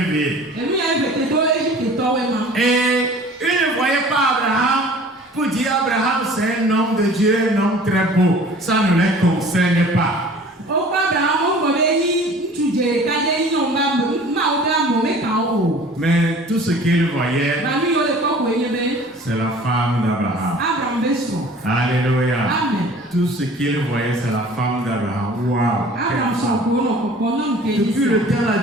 Et ils ne voyaient pas Abraham pour dire Abraham c'est un homme de Dieu, un homme très beau. Ça ne les concerne pas. Mais tout ce qu'ils voyaient, c'est la femme d'Abraham. Alléluia. Tout ce qu'ils voyaient, c'est la femme d'Abraham. Waouh. Depuis le temps, là,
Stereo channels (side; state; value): both; normal; correlation 0.47